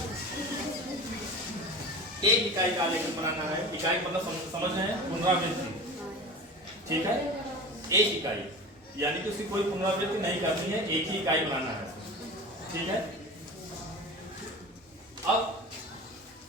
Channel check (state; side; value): normal; both; correlation 0.33